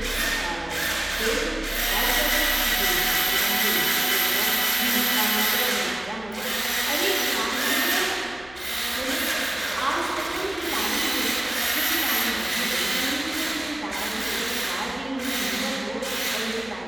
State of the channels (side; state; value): left; noise; hum, 22 dB below the sound